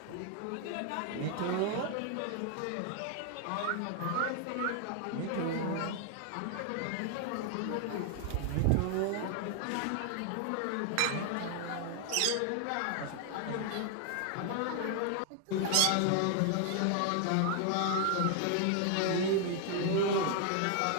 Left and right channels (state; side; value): different; both; correlation 0.00